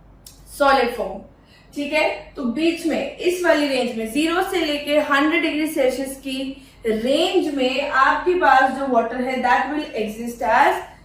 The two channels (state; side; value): identical; both; correlation 1.00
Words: solid form. ठीक है, तो बीच में इस वाली रेंज में 0 से लेके 100 डिग्री सेल्सियस की रेंज में आपके पास जो वाटर है that will exist as